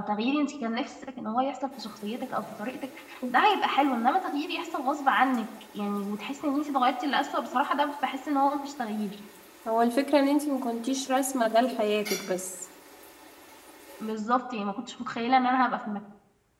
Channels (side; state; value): both; identical; correlation 1.00